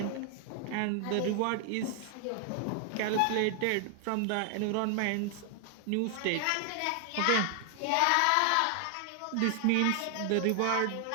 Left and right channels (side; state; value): both; different; correlation 0.00